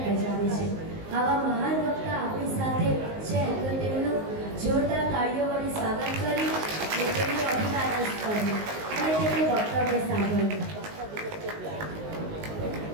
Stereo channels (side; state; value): left; late; 19 ms